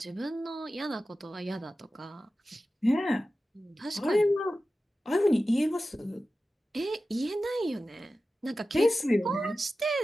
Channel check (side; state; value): both; normal; correlation 0.94